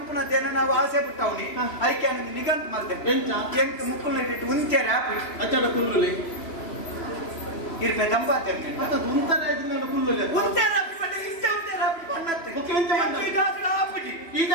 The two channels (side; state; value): right; late; 3.0 ms